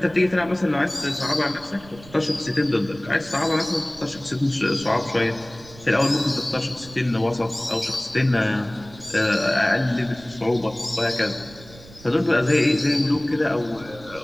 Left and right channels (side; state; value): right; noise; rumble, 20 dB below the sound